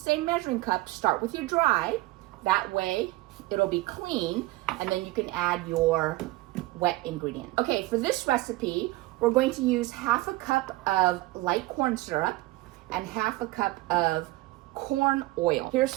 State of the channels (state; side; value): quieter; left; 19.6 dB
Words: measuring cup, start with your dry. That way, it'll be clean, and then you can add your wet ingredient. Okay, for this recipe, we're going to use half a cup of light corn syrup and half a cup of corn oil. Here's